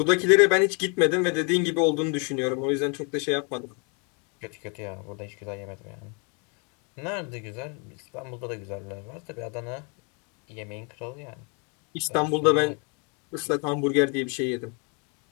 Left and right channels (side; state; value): right; quieter; 34.6 dB